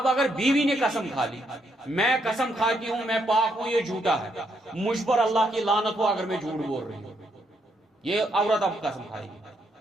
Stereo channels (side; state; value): both; normal; correlation 0.76